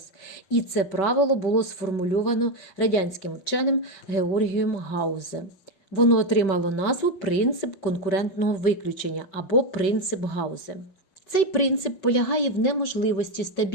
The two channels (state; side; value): late; right; 5.2 ms